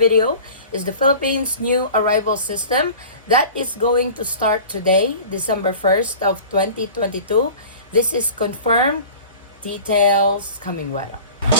is the Philippines new arrival system that is going to start today, December 1st of 2022. This is confirmed. Details coming right up.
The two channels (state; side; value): inverted; both; correlation -0.41